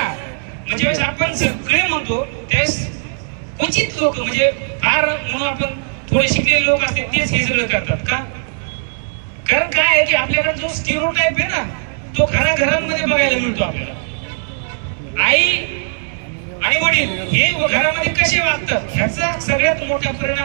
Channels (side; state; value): left; silent; digital silence